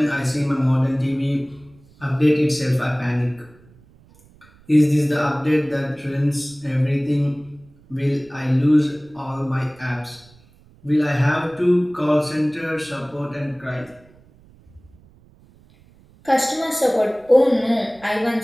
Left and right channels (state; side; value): noise; right; rumble, 28 dB below the sound